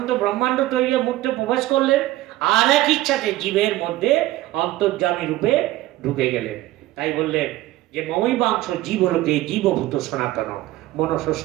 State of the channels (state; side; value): quieter; left; 16.4 dB